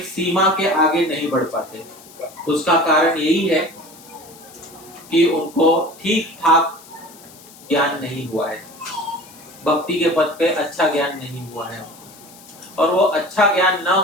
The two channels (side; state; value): left; noise; hiss, 21 dB below the sound